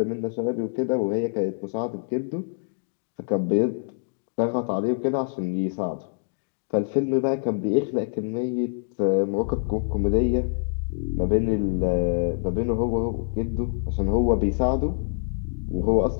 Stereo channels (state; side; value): silent; right; digital silence